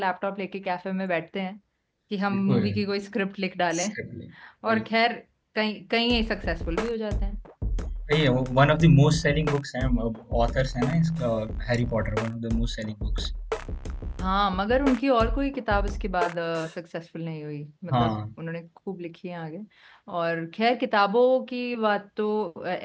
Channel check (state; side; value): identical; both; correlation 1.00